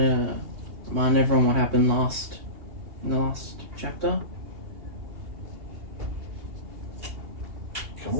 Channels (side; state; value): left; late; 2.8 ms